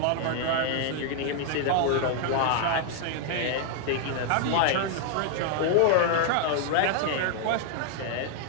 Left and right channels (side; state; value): both; different; correlation 0.00